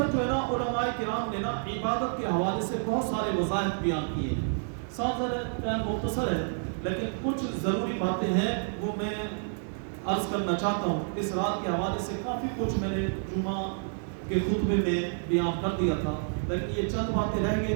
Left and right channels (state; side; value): silent; left; digital silence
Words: جو ہے نا علماء کرام نے نا عبادت کے حوالے سے بہت سارے وظائف بیان کیے ہیں۔ ساتھ مختصر ہے لیکن کچھ ضروری باتیں ہیں وہ میں عرض کرنا چاہتا ہوں۔ اس رات کے حوالے سے کافی کچھ میں نے جمعہ کے خطبے میں بیان کر دیا تھا، لیکن یہ چند باتیں رہ گئی